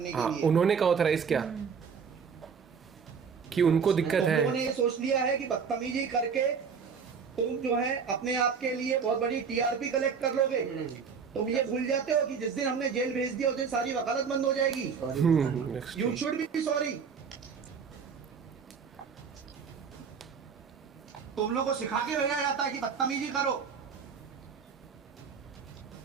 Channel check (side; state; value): left; quieter; 6.2 dB